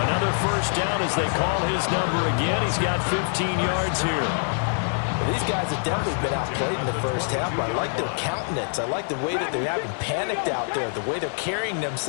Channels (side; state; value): right; silent; digital silence